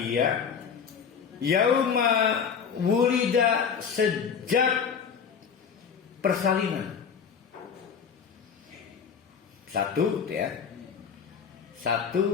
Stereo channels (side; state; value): right; quieter; 6.7 dB